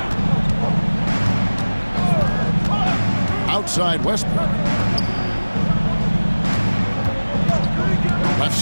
Outside Westbrook. Left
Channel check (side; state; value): both; inverted; correlation -1.00